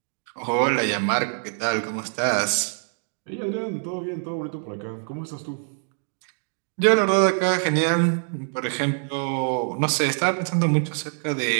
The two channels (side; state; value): left; silent; 62 dB below the other